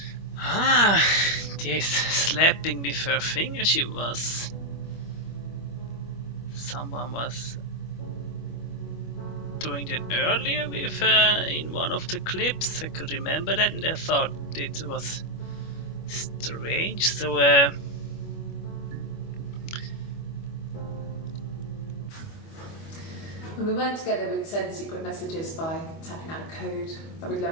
Ah, this slapping with her finger she was. Someone was doing that earlier with in one of the clips. I could remember that and I thought it was strange. So When we weren't together, we'd send secret messages by tapping out a code that we'd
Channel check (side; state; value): right; late; 25 ms